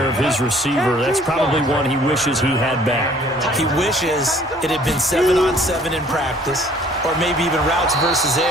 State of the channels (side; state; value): both; normal; correlation 0.56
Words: of his receiver. That's probably one he wishes he had back. He wishes it had been 7-on-7 in practice, or maybe even routes versus